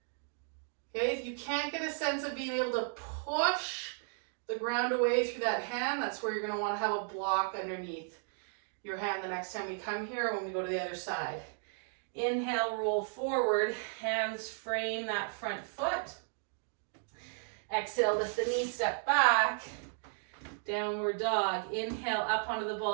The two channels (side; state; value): left; silent; 55 dB below the other